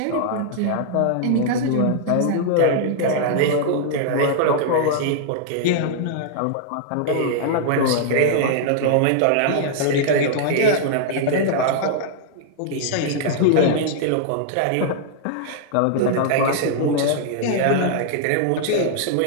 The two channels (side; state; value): both; different; correlation -0.01